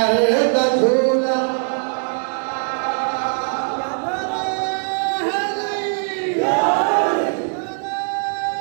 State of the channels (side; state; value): left; silent; digital silence